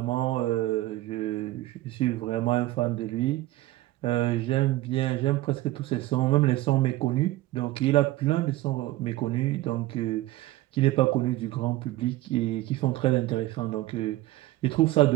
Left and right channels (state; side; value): quieter; left; 16.9 dB